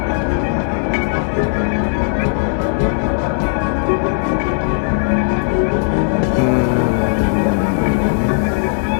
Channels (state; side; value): silent; right; 67 dB below the other